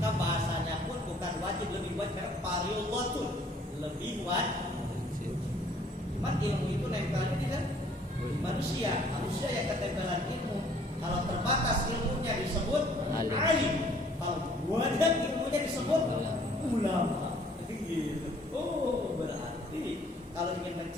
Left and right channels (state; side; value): normal; both; correlation 0.59